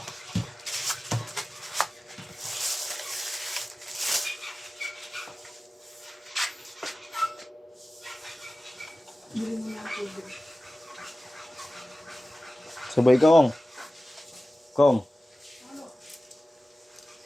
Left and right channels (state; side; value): normal; both; correlation 0.96